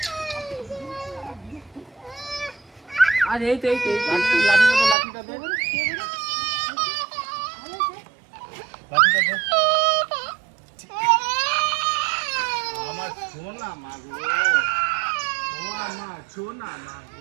আর এই তো লাঠিটা দে। আমার সোনা মাগো, ও আমার সোনা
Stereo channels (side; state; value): left; drops out; at 5.0 s